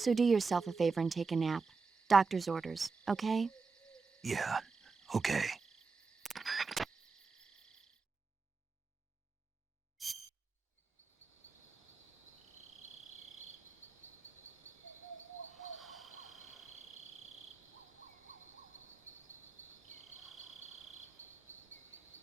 do yourself a favor and take a nap. Doctor's orders, okay? Yeah, okay.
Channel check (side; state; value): left; quieter; 4.6 dB